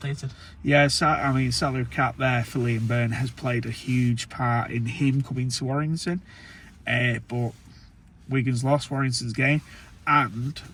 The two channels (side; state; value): both; identical; correlation 1.00